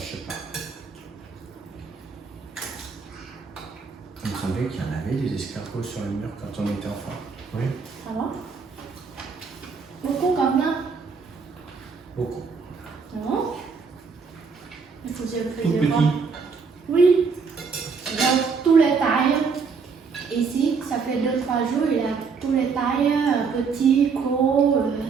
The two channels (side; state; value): left; quieter; 5.3 dB